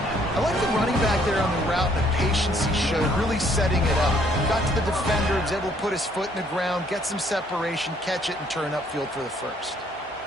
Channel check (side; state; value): both; normal; correlation 0.65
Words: like the running back there on the route, the patience he showed, really setting it up. Got to the defender, was able to put his foot in the ground, get some separation, catch it, and turn upfield for the first.